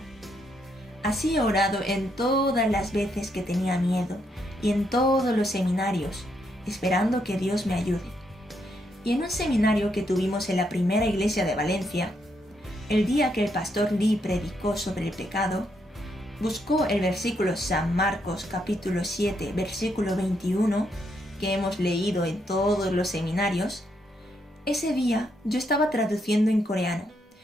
Así he orado en todas las veces que tenía miedo y en todos los seminarios, esperando que Dios me ayude. Y en un seminario que tuvimos en la primera iglesia de Valencia, el día que el pastor Lee predicó sobre el pecado, buscó el versículo San Marcos capítulo 7, versículo 21, que hemos leído en todos los seminarios. Ese día yo estaba traduciendo en coreano,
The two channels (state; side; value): normal; both; correlation 0.77